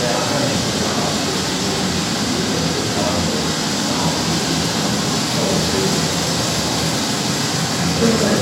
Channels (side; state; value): both; identical; correlation 1.00